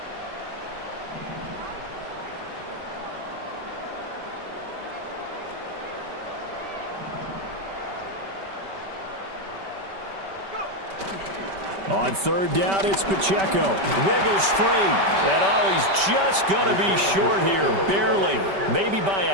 On 3rd down, it's Pacheco. Wiggles free. And oh, he's just going to be short here. Barely. Maybe by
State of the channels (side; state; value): left; late; 5.2 ms